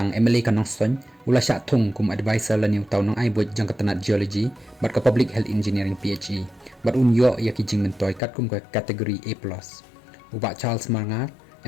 MLA ka Nongson ula syak Thung kum advisor la niu tau nong ai buat jong ka tanat geology bat ka public health engineering PHE bat unyo ya ki jing mentoy kat kum ka kategori A+. Ubak Charles Marngar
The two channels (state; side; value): drops out; right; at 8.2 s